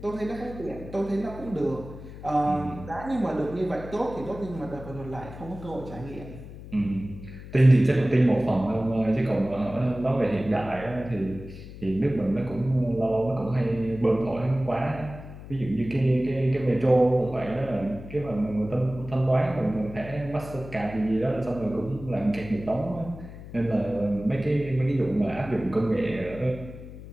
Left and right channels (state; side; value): noise; left; hum, 14 dB below the sound